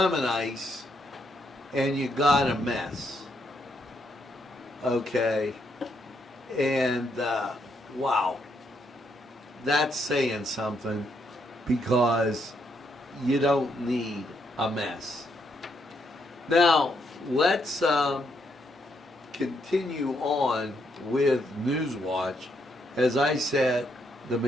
ice, and you got a mess. Okay. And, wow. That's saying something, because you don't need a mess. Now, let's continue on with Newswatch as I set the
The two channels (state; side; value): normal; both; correlation 0.76